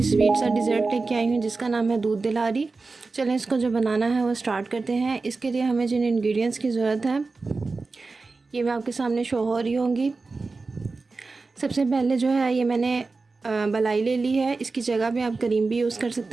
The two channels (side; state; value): left; quieter; 3.9 dB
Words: स्वीट सा डिज़र्ट लेके आई हूँ जिसका नाम है दूध दिलारी। चलें इसको जो बनाना है वो स्टार्ट करते हैं। इसके लिए हमें जिन इंग्रेडिएंट्स की ज़रूरत है ये मैं आपके सामने शो हो रही होंगी। सबसे पहले जो है ये मैंने मलाई ले ली है। इसकी जगह पे आप क्रीम भी यूज़ कर